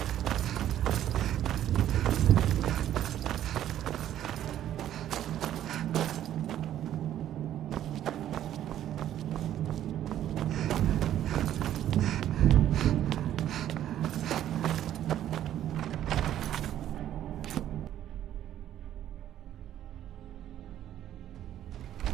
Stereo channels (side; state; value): left; quieter; 11.6 dB